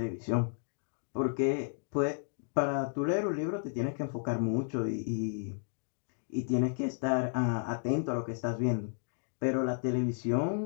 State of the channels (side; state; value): right; silent; digital silence